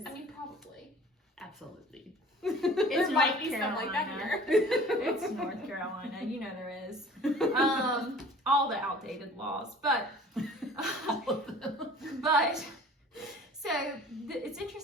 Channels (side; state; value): both; normal; correlation 0.47